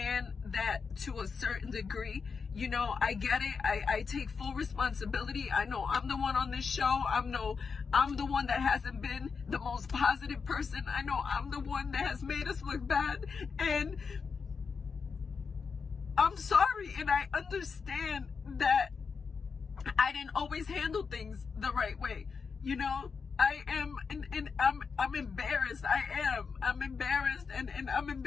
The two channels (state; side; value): quieter; right; 5.4 dB